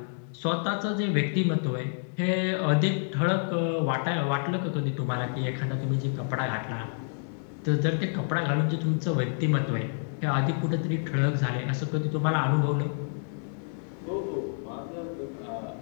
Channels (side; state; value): right; silent; digital silence